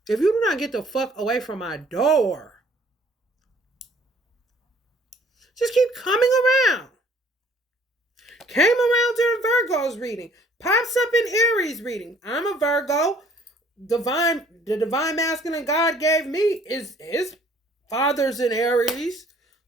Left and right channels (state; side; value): normal; both; correlation 0.58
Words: If you do not get the fuck away from my door, just keep coming around. Came around during Virgo's reading. Pops up in Aries reading. I'm a Virgo. The divine masculine God gave me is his father's in Aries.